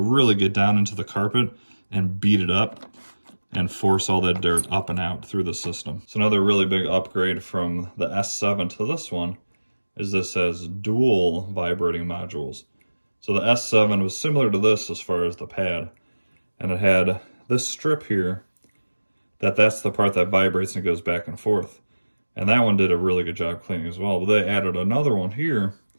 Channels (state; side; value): inverted; both; correlation -1.00